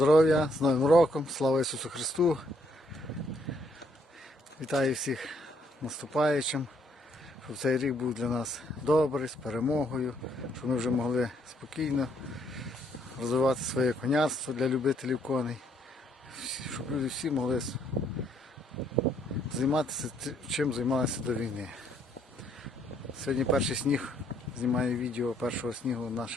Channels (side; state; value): both; normal; correlation 0.69